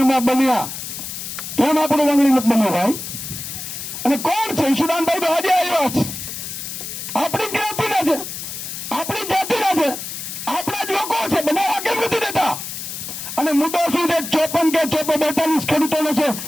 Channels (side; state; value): left; noise; hiss, 8 dB below the sound